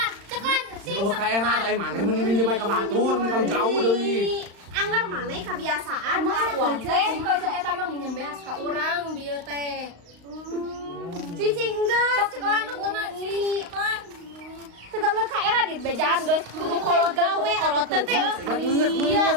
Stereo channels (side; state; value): left; late; 35 ms